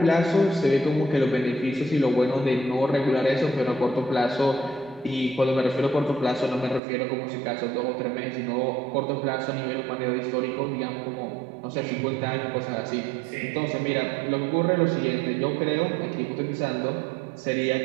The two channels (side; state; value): left; drops out; at 6.8 s